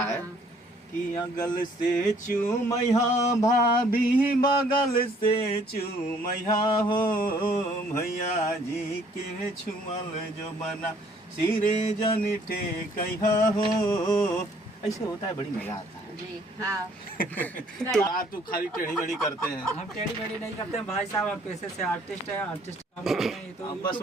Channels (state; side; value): normal; both; correlation 0.61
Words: है कि अगल से चूमैया भाभी, बगल से चूमैया हो, भैया जी के छुअल जो बना सिरे जनिठे कहिया हो। ऐसे होता है, बड़ी मजा आता है। जी हाँ। तो आप तो खाली टेढ़ी मेढ़ी करते हैं। हम टेढ़ी मेढ़ी नहीं करते हैं भाई साहब, हम पैसे से आर्टिस्ट हैं। आर्टिस्ट तो बस